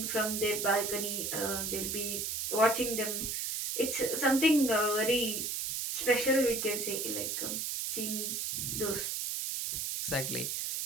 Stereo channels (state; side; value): noise; right; hiss, 2 dB below the sound